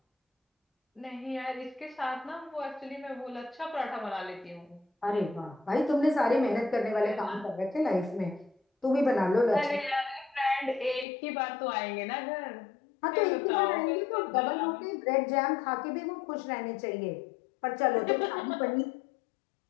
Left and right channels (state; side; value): drops out; right; at 11.1 s